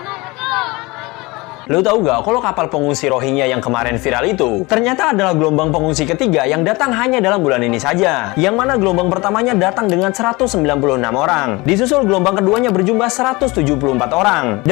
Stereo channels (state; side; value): quieter; right; 23.6 dB